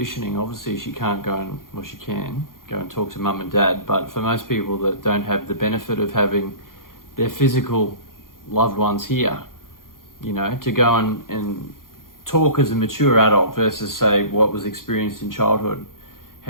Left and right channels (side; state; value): right; late; 0.91 ms